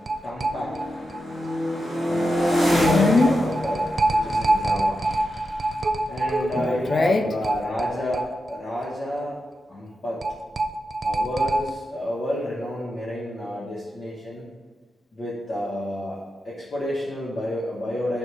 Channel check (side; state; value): both; normal; correlation 0.88